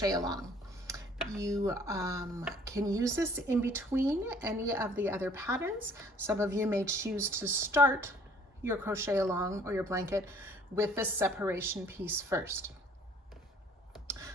along. You can use this in between any of the other patterns. Some of you may choose to start your crochet along or your blanket with this separation piece first.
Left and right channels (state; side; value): normal; both; correlation 0.56